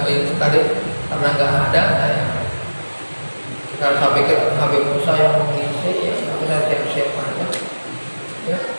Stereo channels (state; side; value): inverted; both; correlation -1.00